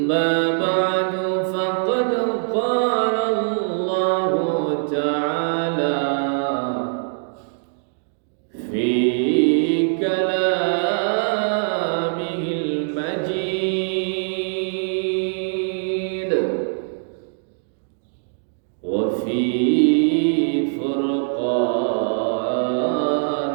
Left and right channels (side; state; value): left; silent; digital silence